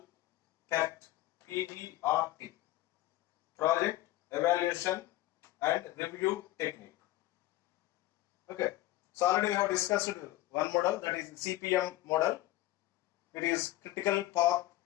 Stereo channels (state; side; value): quieter; right; 16.6 dB